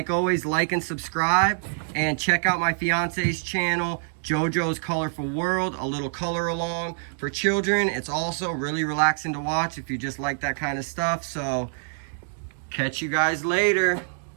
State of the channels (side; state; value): left; silent; digital silence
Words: always, like and subscribe, and check out my fiance's channel, JoJo's Colorful World, a little color along for children. It's also really relaxing to watch if you just like that kind of stuff. So catch you guys later.